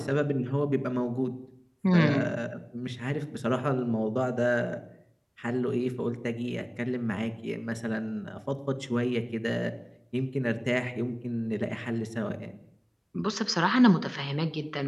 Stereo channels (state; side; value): identical; both; correlation 1.00